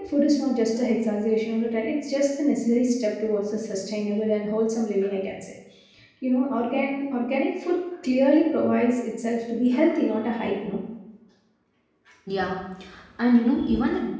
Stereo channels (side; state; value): both; identical; correlation 1.00